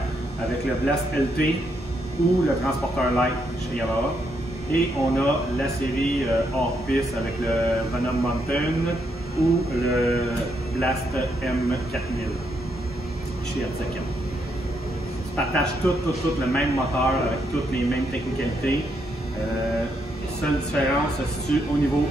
avec le Blast LT ou le Transporteur Light chez Yamaha. Et on a la série hors piste avec le Venom Mountain ou le Blast M4000 chez RC4. Ils partagent tout le même moteur avec toutes les mêmes technicalités. Seule différence se situe au niveau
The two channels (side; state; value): both; normal; correlation 0.77